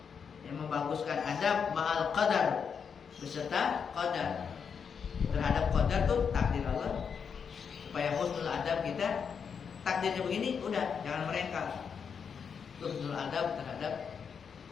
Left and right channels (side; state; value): right; quieter; 6.6 dB